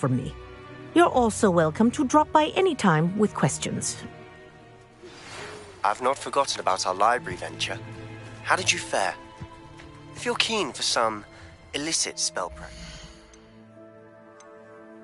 me. You're also welcome to drop by any time with questions. I've not forgotten about our library venture. How did you fare? If you're keen for some illicit spell practice.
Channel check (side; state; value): both; identical; correlation 1.00